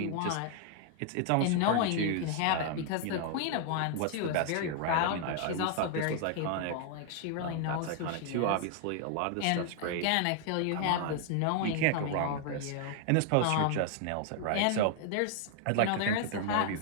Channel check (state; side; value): different; both; correlation 0.00